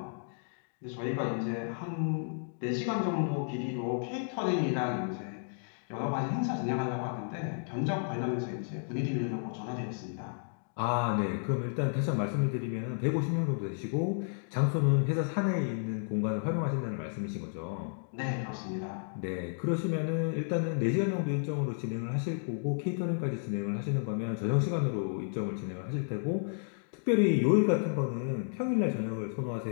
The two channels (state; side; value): silent; right; digital silence